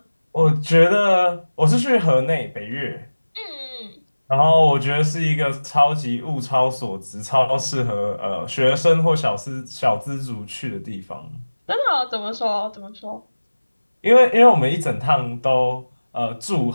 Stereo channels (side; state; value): both; inverted; correlation -1.00